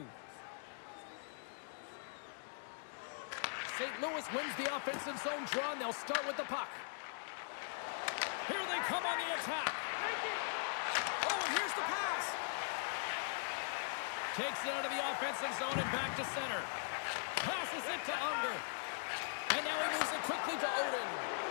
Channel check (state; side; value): silent; right; digital silence